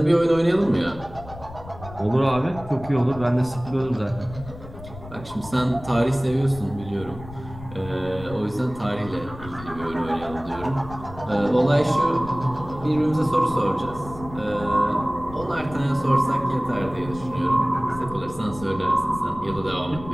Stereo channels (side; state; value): left; noise; rumble, 15 dB below the sound